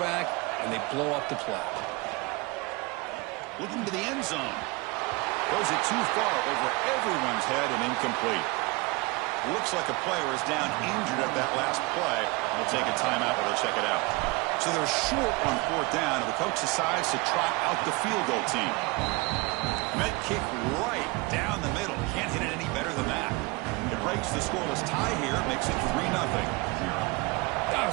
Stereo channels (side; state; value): left; quieter; 25.7 dB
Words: and they blow up the play. Looking to the end zone. Throws it too far over everyone's head and incomplete. Looks like a player is down injured at that last play. We'll take a timeout while they check it out. So they're short on 4th down, and the coach decides to trot out the field goal team. Met kick right down the middle. Can't hit it any better than that. It breaks the scoreless tie here, makes it 3-0. I